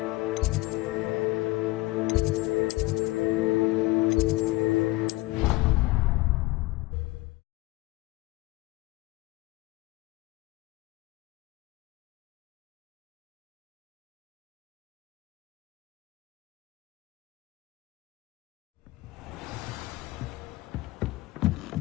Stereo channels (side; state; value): right; quieter; 20.3 dB